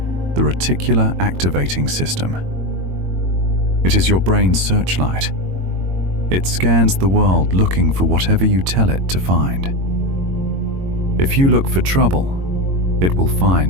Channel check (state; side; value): late; left; 22 ms